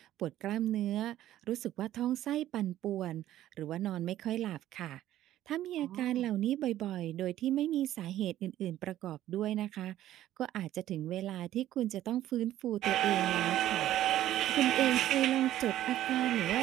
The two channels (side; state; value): left; quieter; 13.2 dB